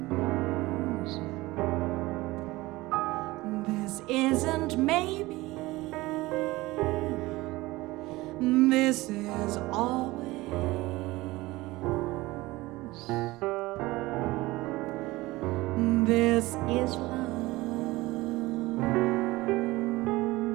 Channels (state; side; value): quieter; left; 19.9 dB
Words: This isn't maybe, this is always. This is love.